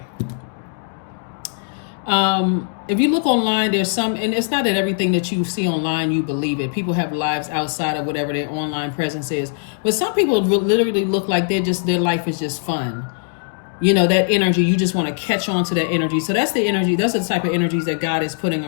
If you look online, there's some, and it's not that everything that you see online, you believe it. People have lives outside of whatever their online presence is. But some people literally look like their life is just fun. That energy, you just want to catch on to that energy. So that's the energy, that's the type of energies that God is putting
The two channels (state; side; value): silent; right; 66 dB below the other